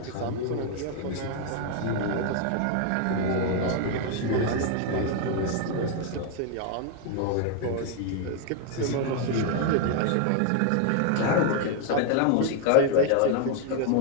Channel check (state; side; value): different; both; correlation 0.00